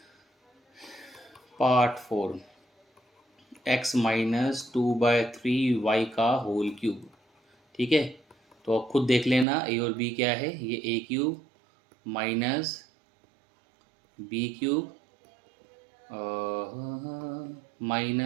Part 4, x minus 2/3y का होल क्यूब। ठीक है, तो अब खुद देख लेना a और b क्या है। ये a cube minus b cube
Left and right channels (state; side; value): drops out; left; at 9.5 s